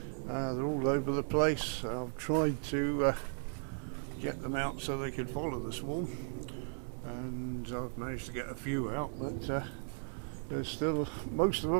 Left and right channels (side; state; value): left; silent; digital silence